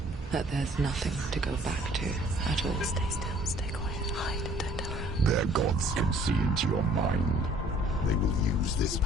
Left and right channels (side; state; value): both; normal; correlation 0.57